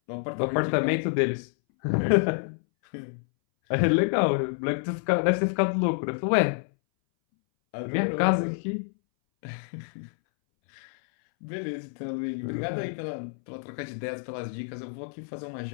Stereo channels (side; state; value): right; silent; 60 dB below the other